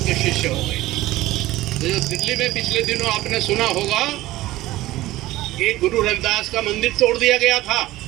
शिष्य हो गए। तो जो दिल्ली में पिछले दिनों आपने सुना होगा कि गुरु रविदास का मंदिर तोड़ दिया गया था,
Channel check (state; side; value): quieter; left; 16.7 dB